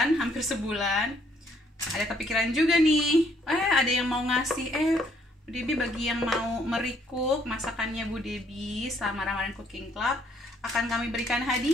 hampir sebulan, ada kepikiran juga nih. Ada yang mau ngasih, Bu Debbie, bagi yang mau merecook masakannya Bu Debbie selama Ramadan Cooking Club, akan kami berikan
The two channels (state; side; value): normal; both; correlation 0.67